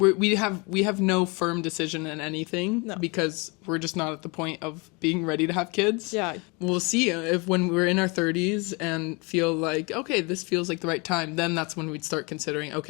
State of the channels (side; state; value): right; quieter; 29.0 dB